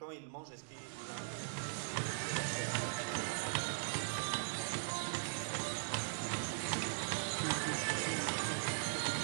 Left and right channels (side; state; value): left; silent; digital silence